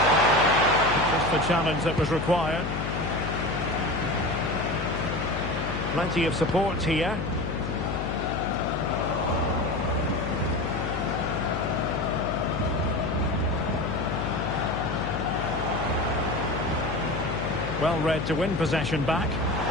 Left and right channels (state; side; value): noise; left; hum, 4 dB below the sound